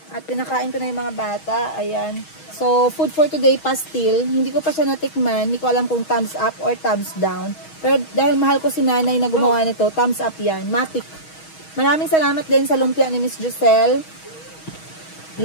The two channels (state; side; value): late; right; 6.3 ms